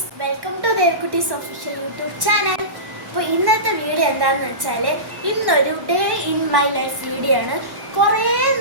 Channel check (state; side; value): late; left; 1.1 ms